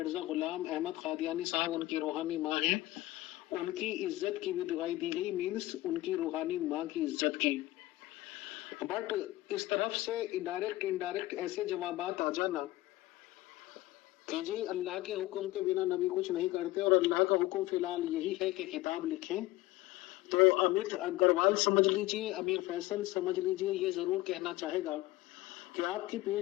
غلام احمد قادیانی صاحب ان کی روحانی ماں ہیں، ان کی عزت کی بھی دعائی دی گئی، مینس ان کی روحانی ماں کی عزت کی۔ بٹ اس طرف سے انڈائریکٹ ایسے جوابات آ جانا کہ جی اللہ کے حکم کے بنا نبی کچھ نہیں کرتے، اور اللہ کا حکم فی الحال یہی ہے کہ کتاب لکھیں، تو امت اگروال سمجھ لیجئے، امیر فیصل سمجھ لیجئے، یہ ضرور کہنا چاہے گا کہ آپ کی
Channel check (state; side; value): quieter; right; 17.8 dB